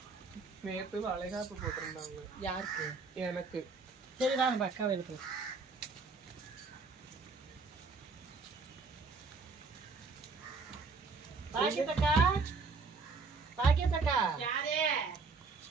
நேத்து வளைகாப்பு போட்டிருந்தாங்க. யாருக்கு? எனக்கு. சரி வா நம்ம அக்காவை எழுப்பு. பாக்கியத்தக்கா, பாக்கியத்தக்கா. யாரே?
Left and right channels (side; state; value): left; quieter; 4.3 dB